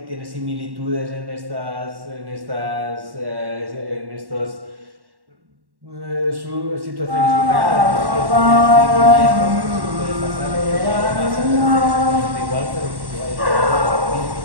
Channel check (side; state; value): left; late; 1.1 ms